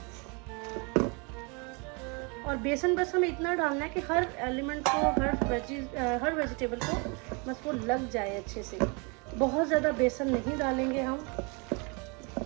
और बेसन बस हमें इतना डालना है कि हर एलिमेंट को, हर वेजिटेबल को बस वो लग जाए अच्छे से। बहुत ज़्यादा बेसन नहीं डालेंगे हम।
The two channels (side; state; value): left; quieter; 32.0 dB